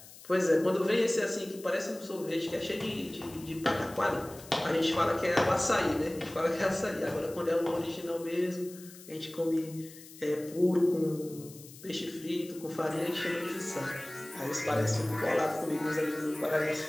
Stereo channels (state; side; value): noise; left; hiss, 18 dB below the sound